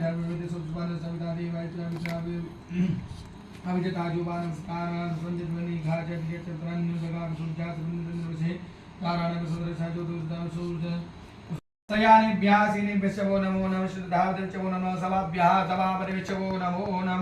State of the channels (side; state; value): both; identical; correlation 1.00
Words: धर्मवेद सुभान सविता देवायत्रा विचावे अविजताजुबान स्कारान संजतवनि घाजत यचत्रन जगाम सूर्यात बिंदुन वसे कारणं सुदर्शा जो दुर्दा सूर्य सयानेभ्यासीने विचवो नमो नमः श्रद्धावते विचवो नमः सभाभ्याः सभापति विचवो नमो